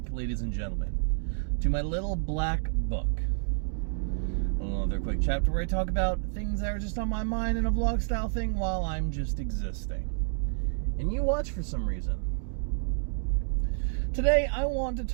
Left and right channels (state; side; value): silent; left; digital silence